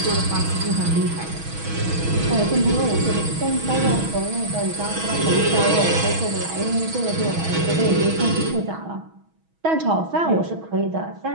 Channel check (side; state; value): left; late; 6.2 ms